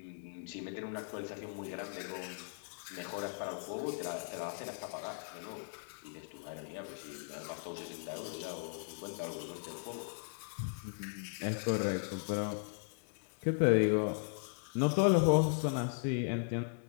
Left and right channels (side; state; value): right; silent; digital silence